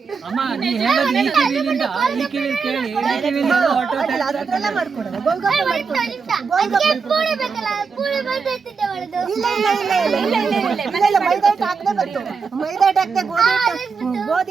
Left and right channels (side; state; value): left; quieter; 5.3 dB